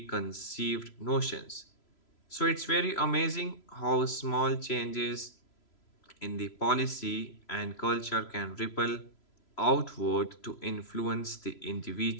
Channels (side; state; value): right; late; 3.0 ms